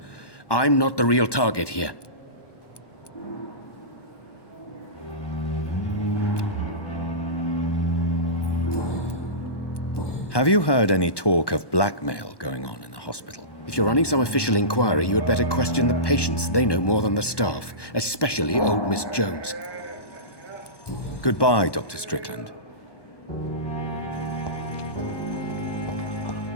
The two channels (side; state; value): right; late; 1.1 ms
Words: I'm not the real target here. Have you heard any talk of blackmail going on in the hospital? If you're running some official inquiry, you had better question the patients. They know more than the staff, especially old Miss Jones. Goodbye, Dr. Strickland.